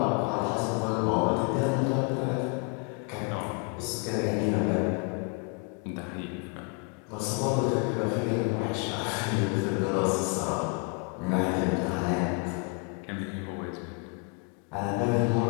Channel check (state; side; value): quieter; right; 33.2 dB